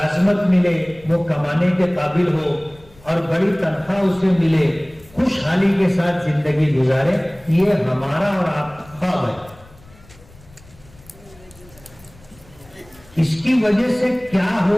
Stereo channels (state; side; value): noise; left; rumble, 25 dB below the sound